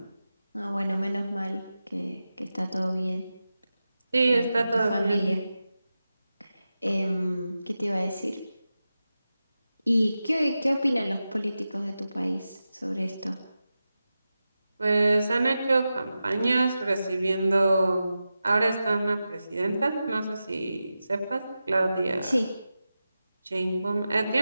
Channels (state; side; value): inverted; both; correlation -0.92